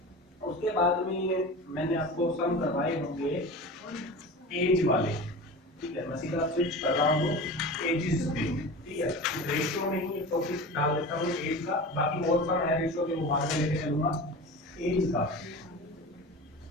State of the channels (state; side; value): normal; both; correlation 0.32